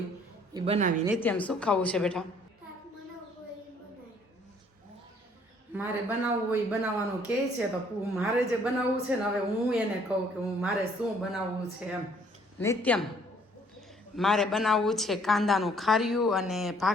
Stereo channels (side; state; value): both; normal; correlation 0.61